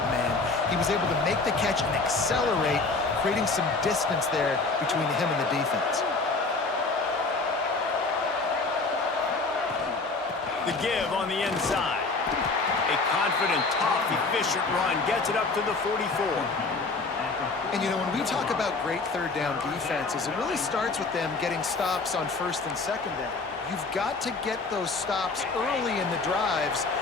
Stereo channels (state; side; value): quieter; right; 3.8 dB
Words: man, he was able to make the catch and accelerate, creating some distance there between him and the defense. The give on the inside. A confident, tough, efficient run gets it up to the 44. And, you know, when we talk about great third down defenses, it really starts with them getting stops on first and second down. You've got to get those stops early in the drives